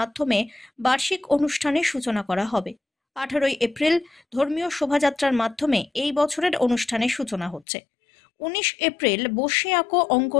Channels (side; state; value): right; drops out; at 7.7 s